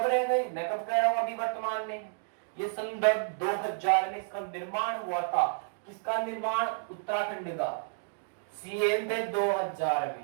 रह गए? मैं कब कह रहा हूं? अभी वर्तमान में। ये सन 2000 में इसका निर्माण हुआ था। किसका निर्माण? उत्तराखंड का। सीएम थे 2000 में।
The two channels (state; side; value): silent; left; digital silence